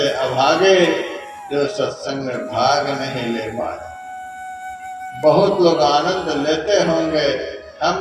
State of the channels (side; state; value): both; identical; correlation 1.00